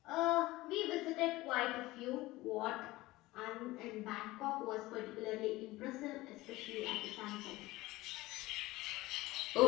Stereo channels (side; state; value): right; quieter; 18.9 dB